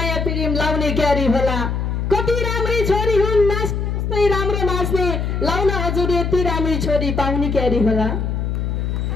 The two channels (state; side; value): noise; left; hum, 1 dB below the sound